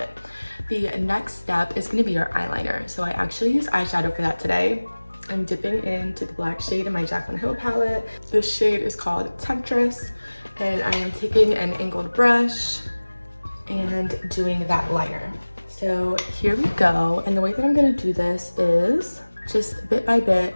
The next step is gonna be your eyeliner. So I actually use eyeshadow for that today. I'm dipping into the black shade in my Jaclyn Hill palette. This shade is called Temptress, and I am taking an angled brush and doing that liner. So here we go, and the way that I'm gonna do this is just bit by bit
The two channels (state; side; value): inverted; both; correlation -1.00